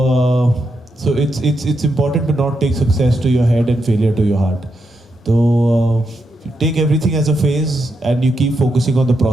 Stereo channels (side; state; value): both; normal; correlation 0.83